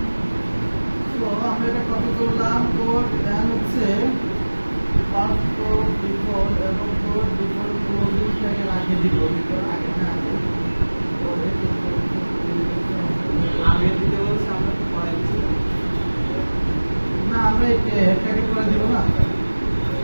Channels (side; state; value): both; inverted; correlation -1.00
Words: তো আমরা এটা কপি করলাম, কোড দেন হচ্ছে পাসওয়ার্ড ডিফল্ট এবং কোড ডিফল্ট ক্লোজিং ট্যাগের আগে দিব। আগে না আগে দিতে বলছে, আমরা তো পরে দিচ্ছি না, আমরা এটাকে করে দিব না।